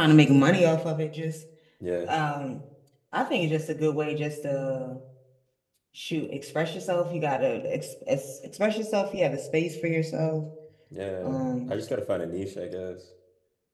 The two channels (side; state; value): both; identical; correlation 1.00